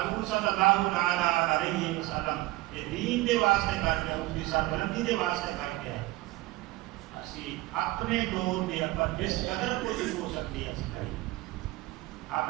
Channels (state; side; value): quieter; left; 19.2 dB